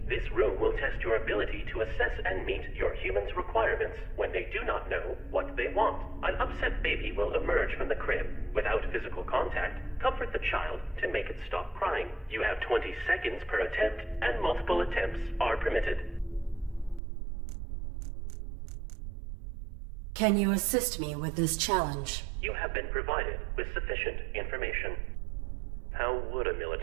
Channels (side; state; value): left; drops out; at 17.0 s